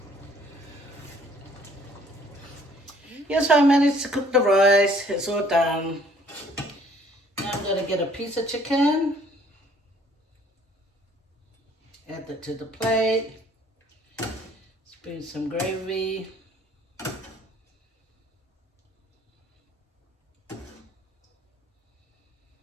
Yes, I managed to cook the rice. It's all done. Now I'm going to get a piece of chicken. Add that to the plate. Spoon some gravy.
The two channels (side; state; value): both; normal; correlation 0.59